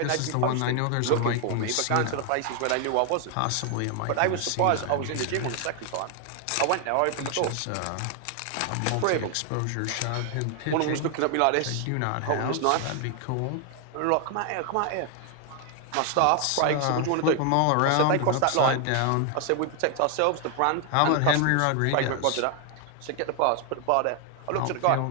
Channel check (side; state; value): both; different; correlation 0.00